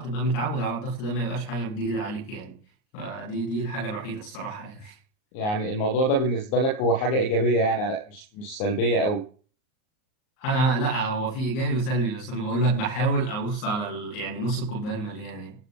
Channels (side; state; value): right; late; 38 ms